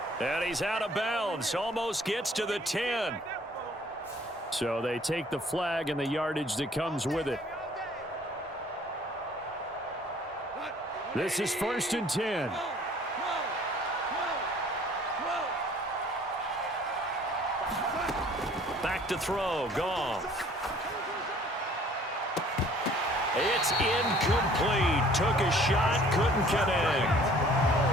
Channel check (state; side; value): normal; both; correlation 0.55